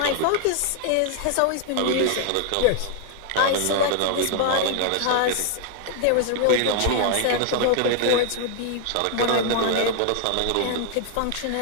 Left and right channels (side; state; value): both; different; correlation 0.00